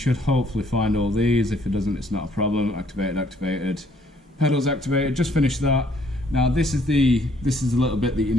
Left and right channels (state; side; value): normal; both; correlation 0.64